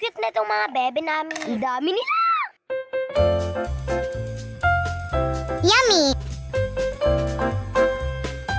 na itong mga bebe namin. Ang dami nila! Yummy!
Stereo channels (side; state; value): both; identical; correlation 1.00